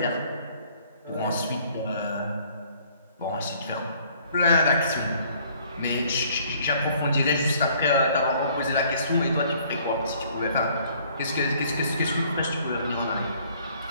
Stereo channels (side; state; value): both; inverted; correlation -0.60